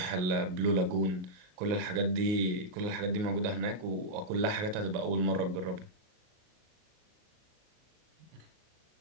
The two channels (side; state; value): left; late; 38 ms